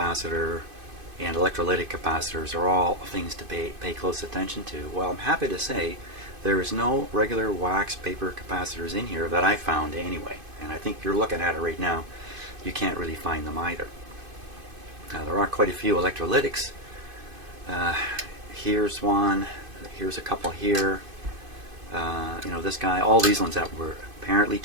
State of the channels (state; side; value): late; left; 2.5 ms